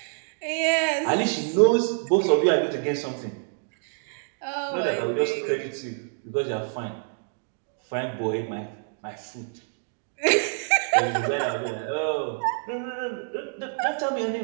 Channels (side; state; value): left; silent; 60 dB below the other